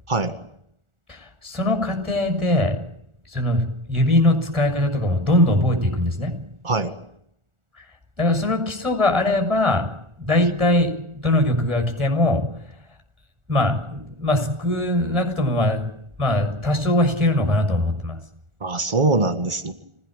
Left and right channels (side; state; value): left; late; 1.4 ms